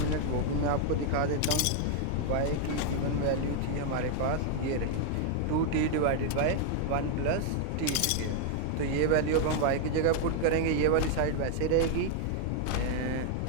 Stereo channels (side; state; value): both; different; correlation 0.00